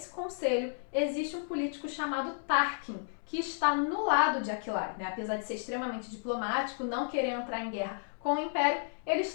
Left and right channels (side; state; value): right; silent; 56 dB below the other